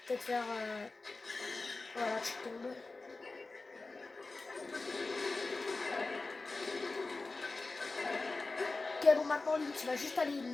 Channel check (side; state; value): right; quieter; 3.6 dB